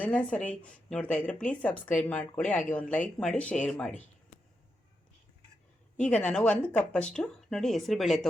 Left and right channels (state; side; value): normal; both; correlation 0.86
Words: ಸರಿ ನೋಡ್ತಾ ಇದ್ದರೆ ಪ್ಲೀಸ್ ಸಬ್ಸ್ಕ್ರೈಬ್ ಮಾಡ್ಕೊಳ್ಳಿ, ಹಾಗೆ ಒಂದು ಲೈಕ್ ಮಾಡಿ, ಶೇರ್ ಮಾಡಿ. ಈಗ ನಾನು 1 ಕಪ್ಪಷ್ಟು ನೋಡಿ ಹೆಸರುಬೇಳೆ